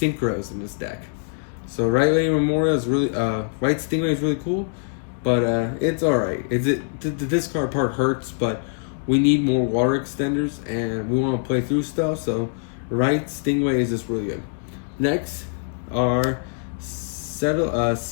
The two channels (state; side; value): silent; right; digital silence